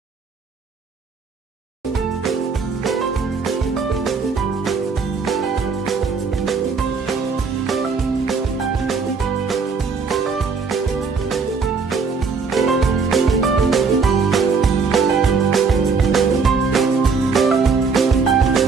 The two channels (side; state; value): left; quieter; 5.0 dB